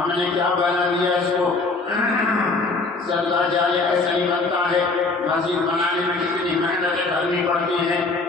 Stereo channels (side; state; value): right; quieter; 3.7 dB